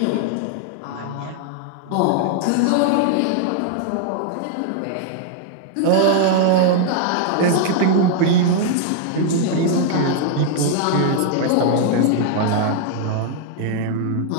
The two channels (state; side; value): different; both; correlation 0.00